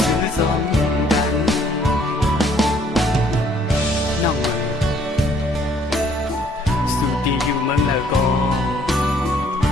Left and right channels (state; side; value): normal; both; correlation 0.62